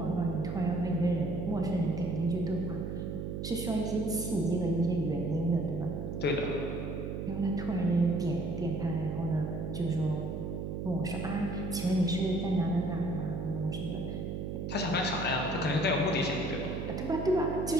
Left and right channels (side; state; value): right; noise; hum, 4 dB below the sound